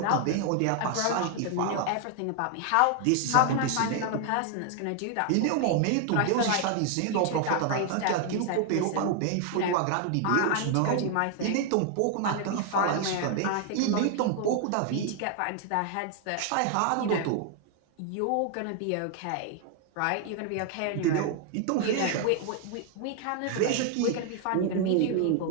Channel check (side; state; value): both; different; correlation 0.00